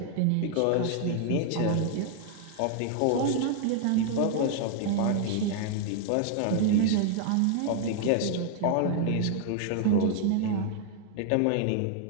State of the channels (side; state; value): both; different; correlation 0.00